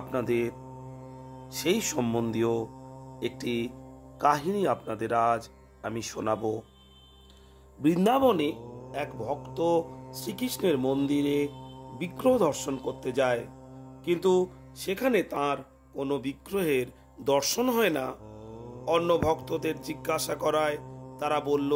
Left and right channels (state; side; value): identical; both; correlation 1.00